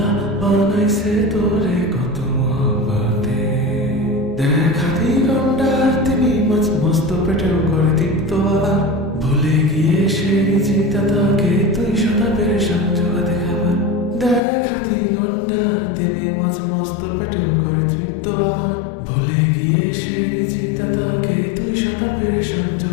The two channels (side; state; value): right; drops out; at 14.4 s